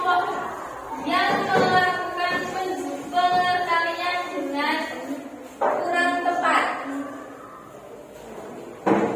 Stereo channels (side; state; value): both; identical; correlation 1.00